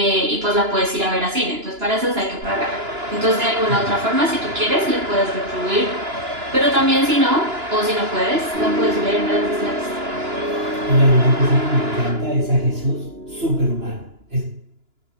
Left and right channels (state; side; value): late; left; 2.9 ms